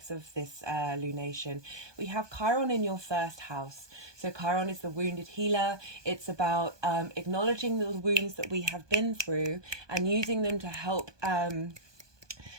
of this lunation. We have Chiron in your 1st house. So Chiron is the wounded healer. It's about acknowledging the wounds that we have been through and using them to help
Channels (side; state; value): left; late; 1.2 ms